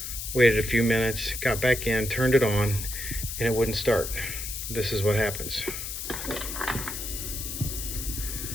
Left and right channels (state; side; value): noise; left; hiss, 6 dB below the sound